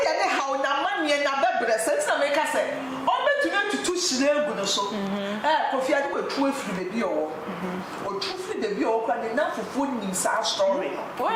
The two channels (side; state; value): both; identical; correlation 1.00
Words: ye ne hawo na manie na bebre sense na make say o betuna tutu shire egu no so coffee ade wetu afiri bebi owo otu firi bebi owo kwa ne na fufu nim sa story no